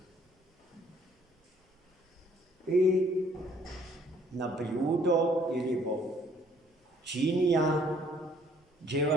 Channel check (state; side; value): normal; both; correlation 0.61